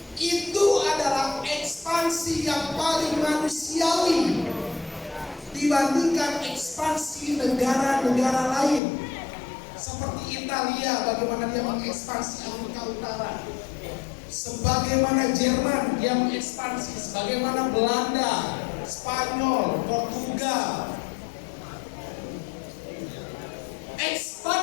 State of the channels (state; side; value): drops out; right; at 8.8 s